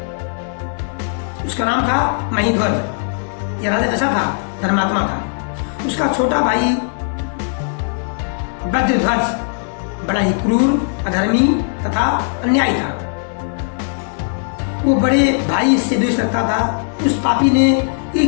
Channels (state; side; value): silent; right; 64 dB below the other